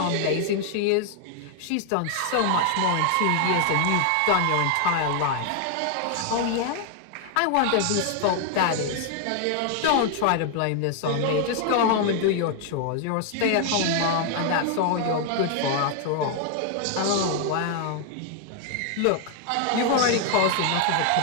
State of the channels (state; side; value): different; both; correlation 0.00